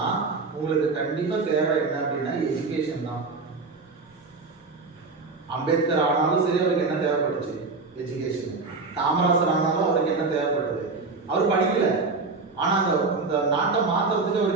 உங்களுக்கு கண்டிப்பா தேவை என்ன அப்படின்னா எஜுகேஷன் தான். அம்பேத்கர் ஆனாலும் சரி, அவருக்கு என்ன தேவைப்பட்டுச்சு? எஜுகேஷன். காமராசர் ஆனாலும் அவருக்கு என்ன தேவைப்பட்டது? அவர் படிக்கல, ஆனா இந்த நாட்டை மாத்துறதுக்கு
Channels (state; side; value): quieter; left; 4.0 dB